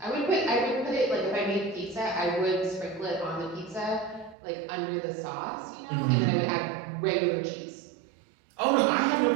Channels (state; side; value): drops out; left; at 4.4 s